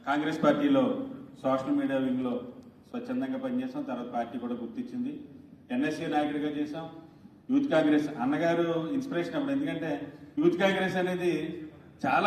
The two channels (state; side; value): identical; both; correlation 1.00